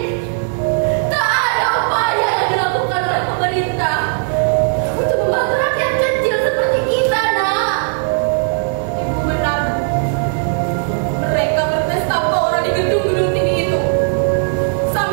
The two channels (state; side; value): silent; left; 68 dB below the other